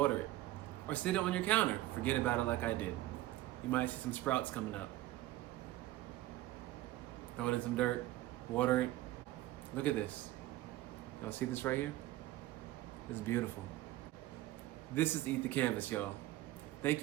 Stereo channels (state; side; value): quieter; left; 15.9 dB